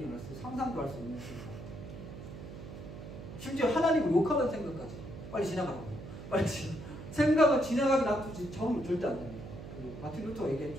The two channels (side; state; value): right; noise; hum, 11 dB below the sound